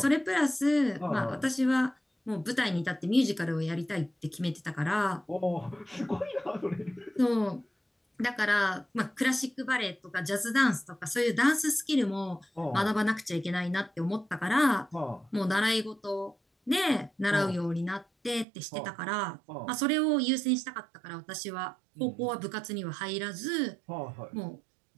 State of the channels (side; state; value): left; drops out; at 18.4 s